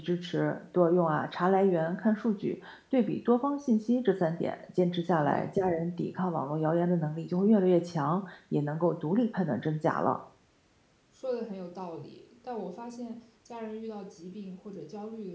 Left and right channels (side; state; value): both; identical; correlation 1.00